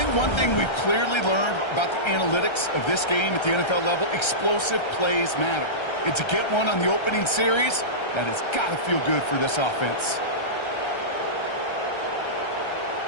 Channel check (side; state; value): right; late; 1.3 ms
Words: one thing we've clearly learned about the analytics of this game at the NFL level, explosive plays matter. And to get one on the opening series, that has got to feel good for this offense.